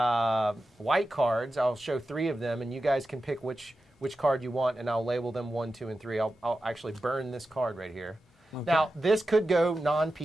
cards. I'll show 3 of them, and you guys can pick which card you want, and I'll label them 1, 2, and 3. I'll actually burn this card right here. Okay. Now, this could go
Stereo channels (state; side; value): normal; both; correlation 0.92